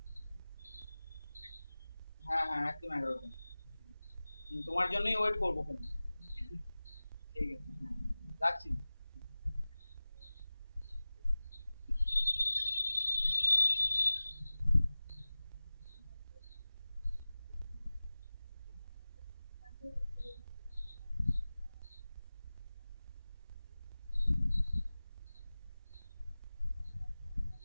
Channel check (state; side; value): inverted; both; correlation -0.99